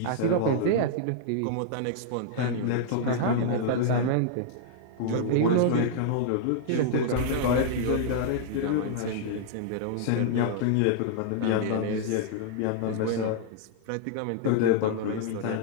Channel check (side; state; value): both; different; correlation -0.01